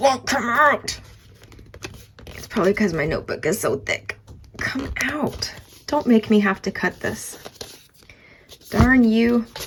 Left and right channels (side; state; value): both; identical; correlation 1.00